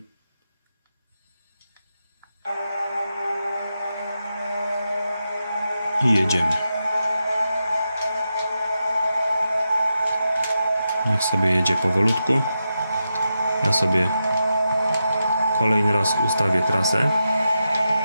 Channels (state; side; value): inverted; both; correlation -0.88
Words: I jedziemy. Niech sobie jedzie powolutku. Ja sobie kolejny raz ustawię trasę.